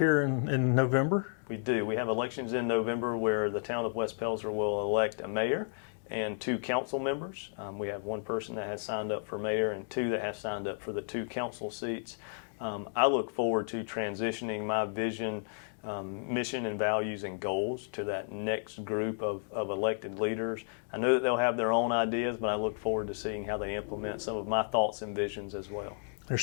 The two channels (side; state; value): right; silent; digital silence